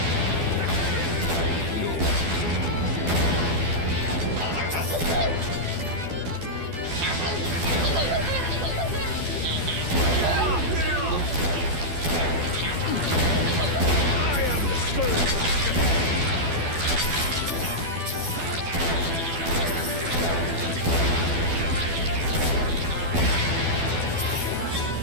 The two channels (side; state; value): left; late; 12 ms